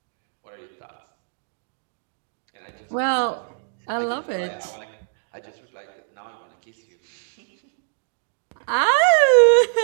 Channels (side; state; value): left; silent; digital silence